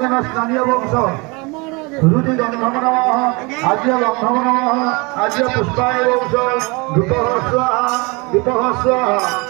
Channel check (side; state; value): left; quieter; 27.7 dB